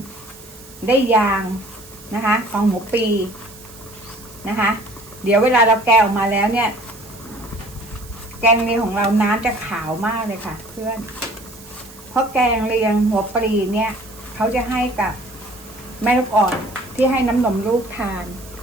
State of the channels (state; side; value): noise; right; hiss, 20 dB below the sound